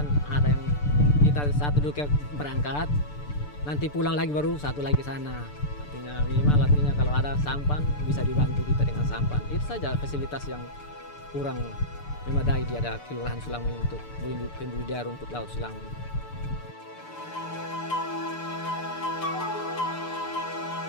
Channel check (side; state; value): right; late; 6.8 ms